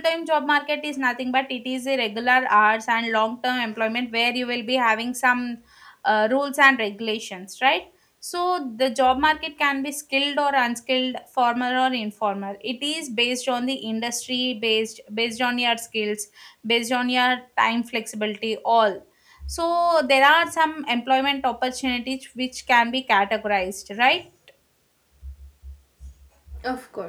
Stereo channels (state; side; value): identical; both; correlation 1.00